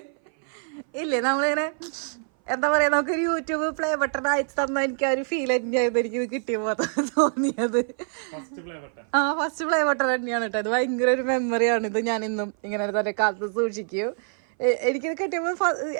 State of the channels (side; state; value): left; silent; 58 dB below the other